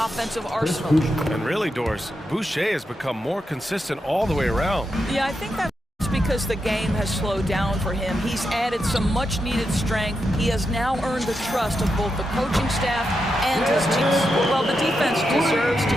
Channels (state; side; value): normal; both; correlation 0.86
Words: arsenal. And really, Doris, Boucher has become more consistent all the way around. Yeah, I think that's because the game has slowed down for him. He's added some much-needed strength. He has now earned the trust of both the coaching staff and his team. Well, the defense deserves to